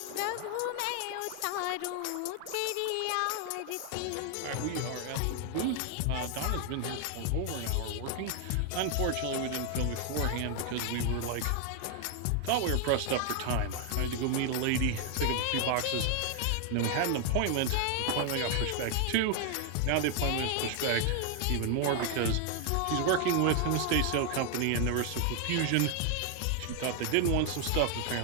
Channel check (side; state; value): both; different; correlation 0.00